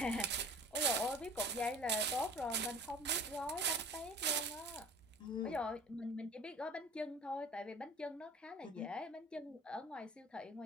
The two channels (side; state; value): both; normal; correlation 0.43